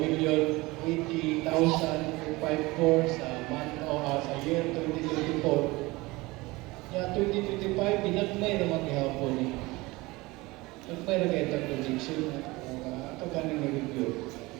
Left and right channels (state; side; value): quieter; left; 22.0 dB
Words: sa month o sa year 2024. Ya 2025 binagmay na maghihapon ni. Nagmay na kayo itong projection ato ganing review.